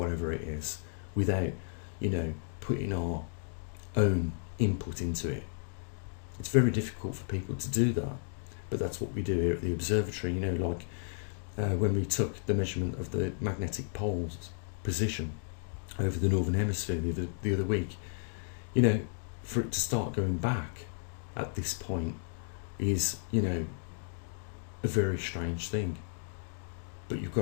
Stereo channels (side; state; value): right; silent; digital silence